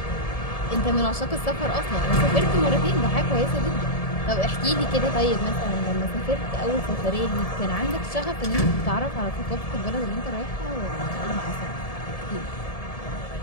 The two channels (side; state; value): right; late; 1.7 ms